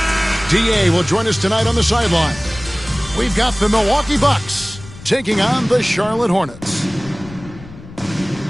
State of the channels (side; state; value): left; noise; rumble, 17 dB below the sound